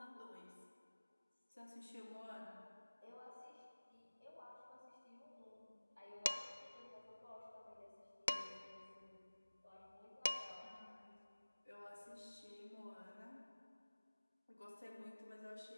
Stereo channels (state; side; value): inverted; both; correlation -1.00